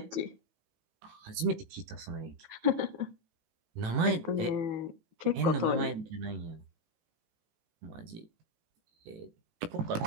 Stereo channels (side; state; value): left; late; 18 ms